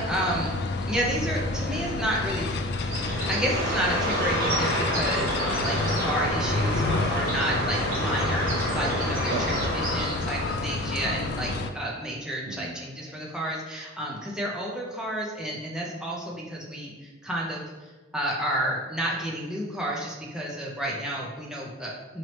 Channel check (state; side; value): normal; both; correlation 0.36